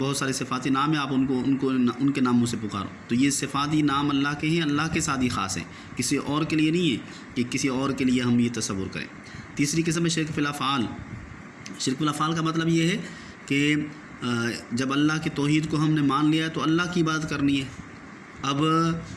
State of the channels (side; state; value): both; identical; correlation 1.00